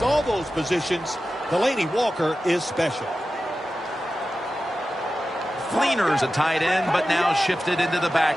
all those positions. Delaney Walker is special. Fleener's a tight end, but now shifted into the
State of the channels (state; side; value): normal; both; correlation 0.93